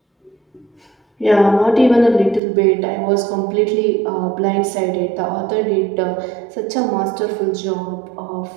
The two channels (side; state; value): left; drops out; at 2.4 s